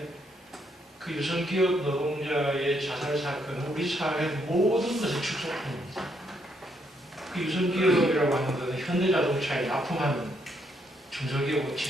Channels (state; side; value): normal; both; correlation 0.74